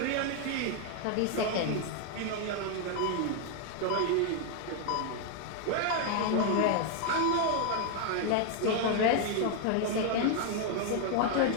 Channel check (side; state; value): both; different; correlation 0.00